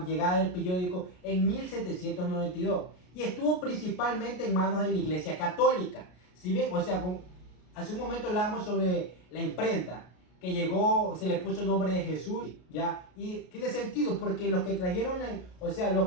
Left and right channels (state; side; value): late; right; 33 ms